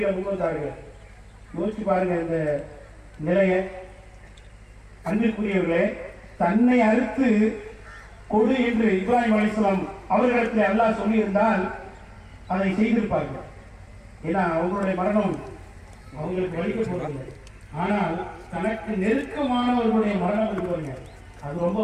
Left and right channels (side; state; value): both; identical; correlation 1.00